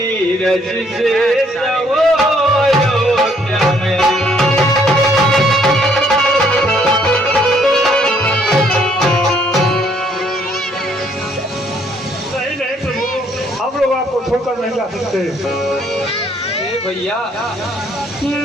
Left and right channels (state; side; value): normal; both; correlation 0.66